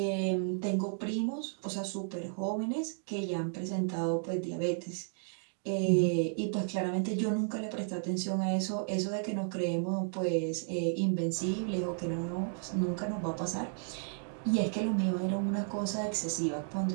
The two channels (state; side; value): silent; left; digital silence